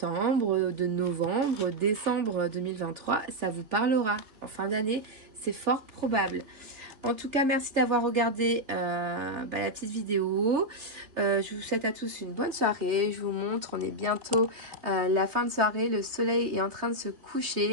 de novembre, décembre 2023, ça vous parlera. En fin d'année, c'est fort probable. En tout cas, merci d'avoir regardé la petite vidéo. Je vous souhaite à tous une bonne soirée. Je vous montre, on est bientôt la fin de soirée. Le soleil est en train de se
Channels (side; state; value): left; late; 3.4 ms